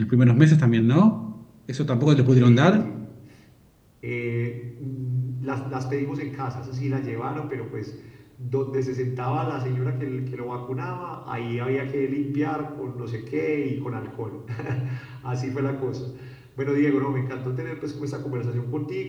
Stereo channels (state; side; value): identical; both; correlation 1.00